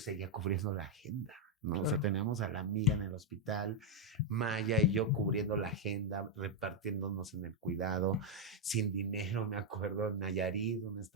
cubriendo la agenda, ¿no? Claro. O sea, teníamos a la amiga en el hospital, Maya y yo cubriendo la agenda, repartiéndonos en el cuidado, sin dinero, me acuerdo, en Nayarit, un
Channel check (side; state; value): both; normal; correlation -0.01